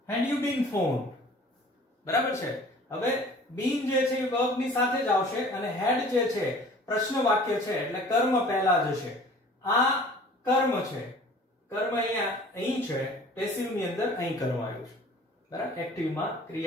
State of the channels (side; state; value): both; normal; correlation 0.48